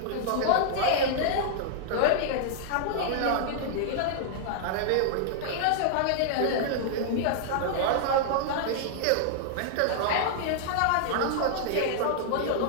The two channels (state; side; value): different; both; correlation -0.01